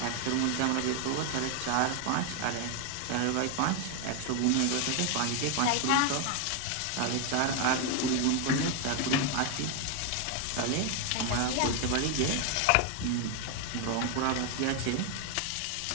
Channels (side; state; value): both; different; correlation 0.01